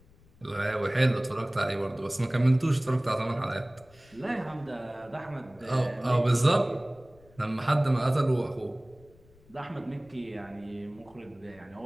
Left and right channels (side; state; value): left; noise; rumble, 27 dB below the sound